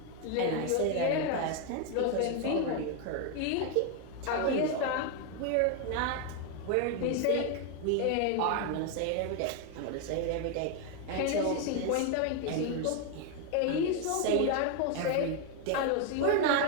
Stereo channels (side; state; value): both; different; correlation 0.01